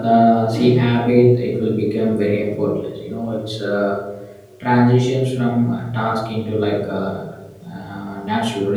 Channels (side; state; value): both; identical; correlation 1.00